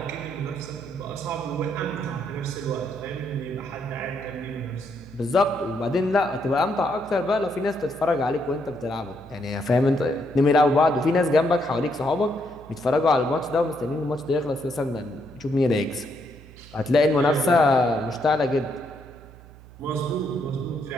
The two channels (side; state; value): right; noise; hum, 20 dB below the sound